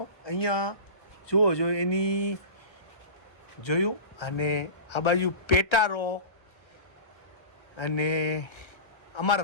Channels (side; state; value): right; late; 1.3 ms